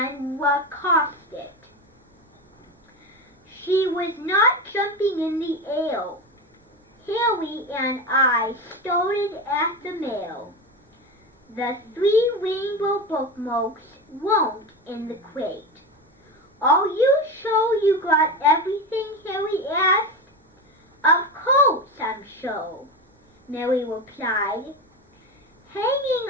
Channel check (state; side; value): normal; both; correlation 0.21